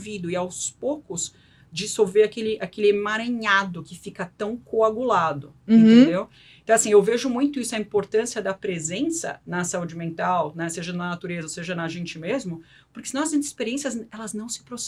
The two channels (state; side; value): identical; both; correlation 1.00